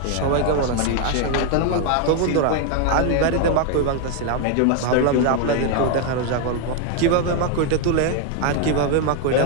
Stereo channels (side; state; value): both; different; correlation 0.01